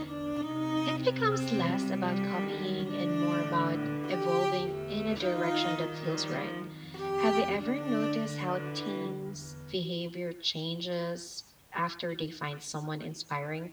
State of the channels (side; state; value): both; identical; correlation 1.00